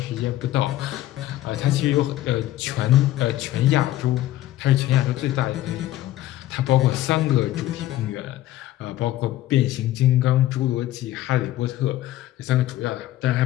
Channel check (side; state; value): right; quieter; 14.6 dB